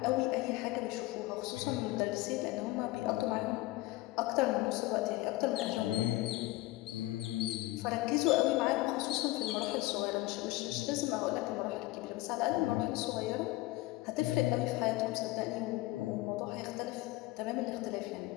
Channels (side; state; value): right; quieter; 19.2 dB